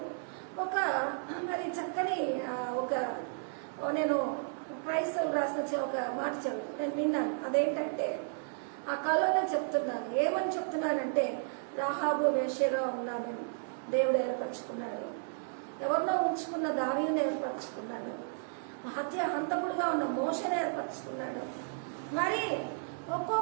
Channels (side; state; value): left; silent; 56 dB below the other